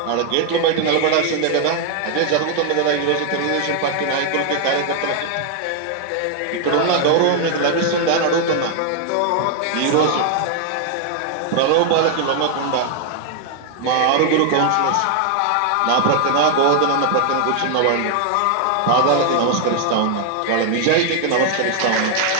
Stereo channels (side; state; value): both; different; correlation 0.00